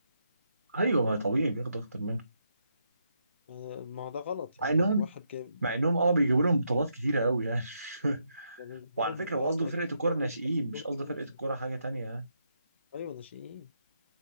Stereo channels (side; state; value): both; inverted; correlation -0.80